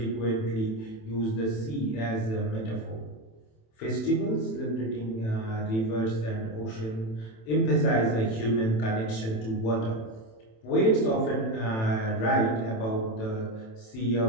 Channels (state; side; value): late; right; 27 ms